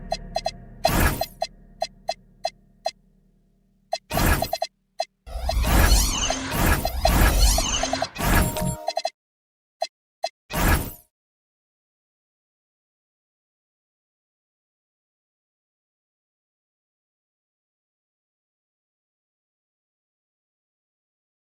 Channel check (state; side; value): identical; both; correlation 1.00